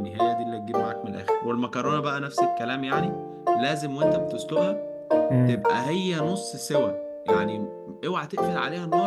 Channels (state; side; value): identical; both; correlation 1.00